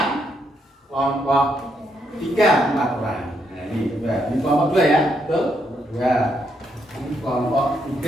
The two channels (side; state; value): both; normal; correlation 0.77